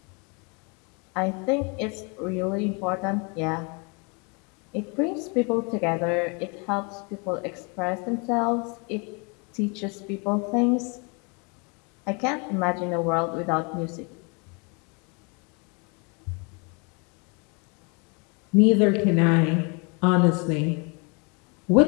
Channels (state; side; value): quieter; right; 32.9 dB